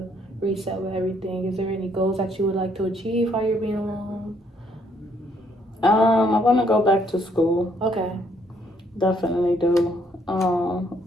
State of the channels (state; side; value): normal; both; correlation 0.68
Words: reset with everything. Is there any goals that you would like to achieve while you're being alone? I want to go back to school. Okay. Definitely do.